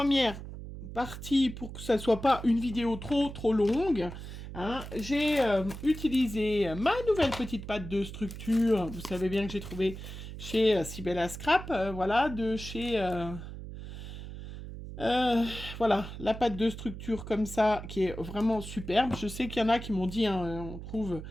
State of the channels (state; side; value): noise; right; hum, 10 dB below the sound